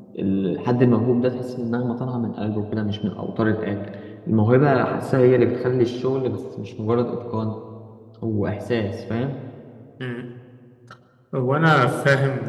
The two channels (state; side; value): identical; both; correlation 1.00